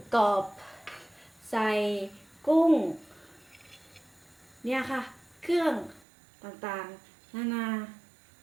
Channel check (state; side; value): drops out; left; at 6.0 s